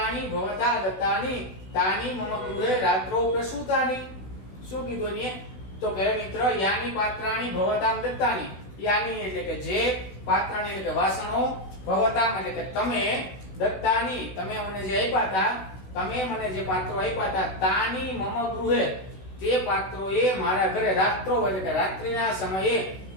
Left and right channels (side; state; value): right; late; 16 ms